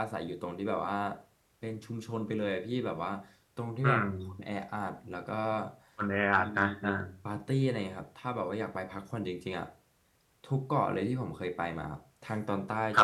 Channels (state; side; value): identical; both; correlation 1.00